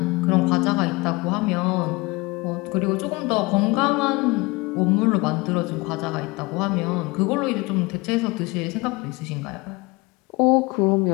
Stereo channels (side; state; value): right; quieter; 24.0 dB